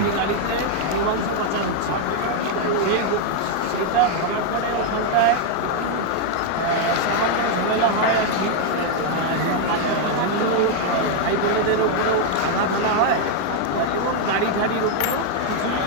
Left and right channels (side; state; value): both; different; correlation 0.00